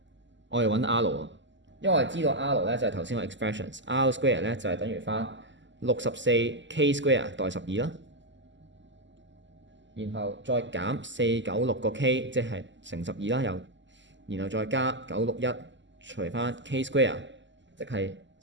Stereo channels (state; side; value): late; left; 0.54 ms